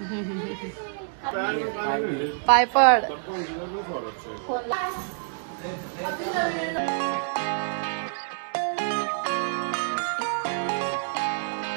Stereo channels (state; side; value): silent; left; digital silence